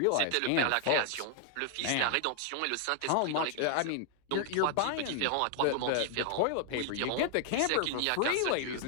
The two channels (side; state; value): both; different; correlation 0.00